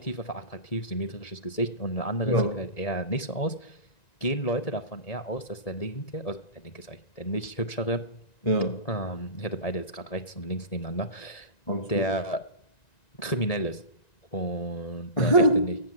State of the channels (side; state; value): right; late; 1.9 ms